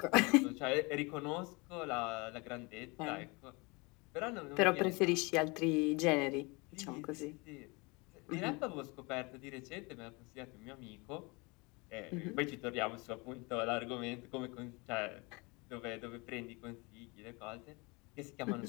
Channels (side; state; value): right; quieter; 27.5 dB